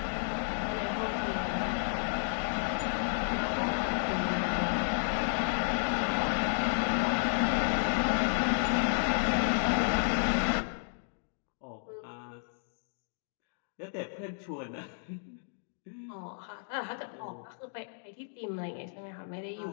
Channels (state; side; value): silent; right; digital silence